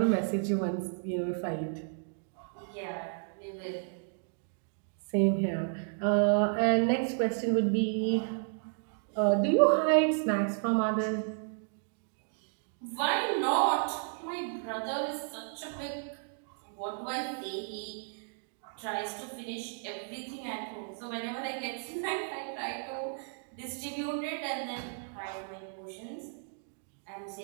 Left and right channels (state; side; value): silent; left; digital silence